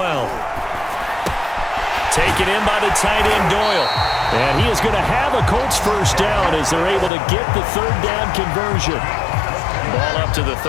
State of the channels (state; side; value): drops out; right; at 7.1 s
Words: Taken in by the tight end Doyle. And he is going to have a Colts 1st down as they're able to get the 3rd down conversion. Ball up to the